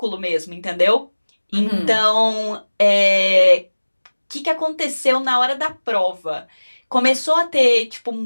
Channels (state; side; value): inverted; both; correlation -1.00